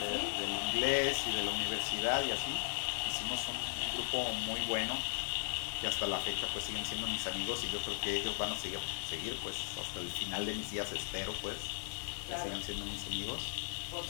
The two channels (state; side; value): silent; right; digital silence